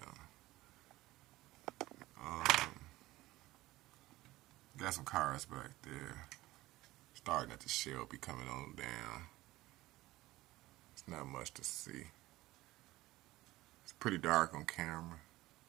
on. Got some cars back there. Starting at the shelf, be coming on down. It's not much to see. It's pretty dark on camera.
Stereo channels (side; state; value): left; quieter; 17.9 dB